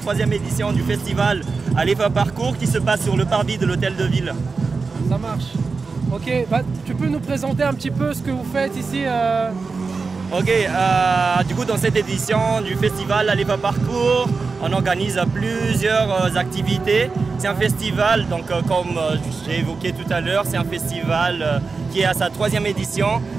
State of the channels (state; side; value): quieter; left; 4.5 dB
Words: édition du festival Alefa Parcours qui se passe sur le parvis de l'hôtel de ville. Ça marche. Ok, tu peux nous présenter un petit peu ce que vous faites ici Ok, du coup dans cette édition du festival Alefa Parcours, on organise plusieurs activités. C'est un festival, donc comme j'ai évoqué tout à l'heure, c'est un festival qui est à sa 3e édition.